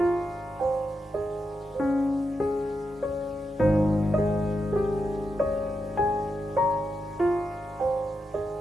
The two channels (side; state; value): both; normal; correlation 0.86